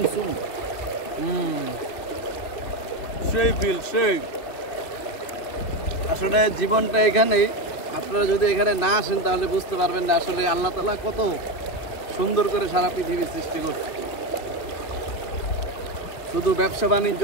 সুন। সেই ফিল সেই। আসলে জীবনটা এখানেই, আপনারা যদি এখানে না আসেন তাহলে বুঝতে পারবেন না আসলে আল্লাহ তাআলা কত সুন্দর করে সারা পৃথিবী সৃষ্টি করছে। শুধু ব্যবসা বাণিজ্য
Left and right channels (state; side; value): late; right; 2.9 ms